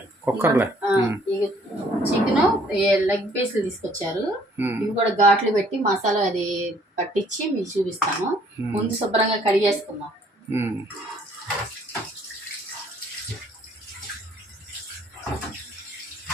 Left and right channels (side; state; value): both; normal; correlation 0.61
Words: కుక్కర్లే. చికెన్ లెగ్ పీస్లు తీసుకొచ్చారు. ఇవి కూడా ఘాట్లు పెట్టి మసాలా అది పట్టించి మీకు చూపిస్తాను. ముందు శుభ్రంగా కడిగేసుకుందాం.